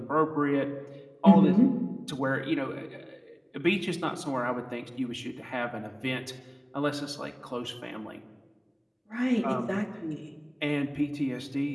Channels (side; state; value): both; identical; correlation 1.00